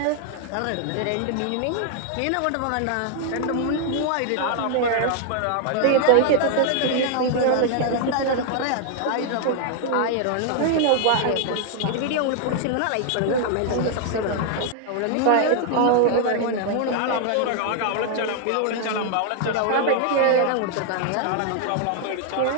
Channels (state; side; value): different; both; correlation 0.00